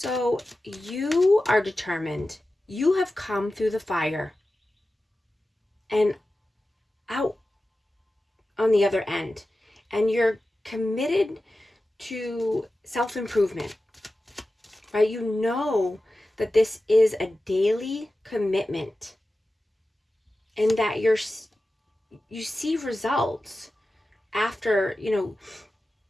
you are determined. You have come through the fire and out on the other end, and you're committed to self-improvement, right? You know that this is a daily commitment and that you see results after, you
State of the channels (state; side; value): normal; both; correlation 0.94